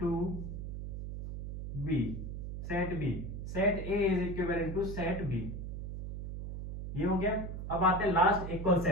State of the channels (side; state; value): right; noise; hum, 6 dB below the sound